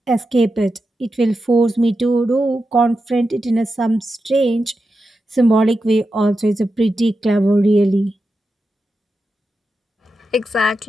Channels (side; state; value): both; normal; correlation 0.89